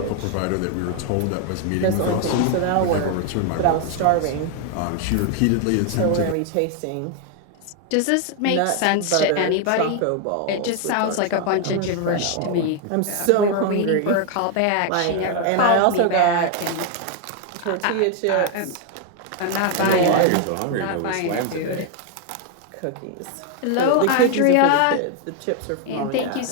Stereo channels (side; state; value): both; different; correlation 0.01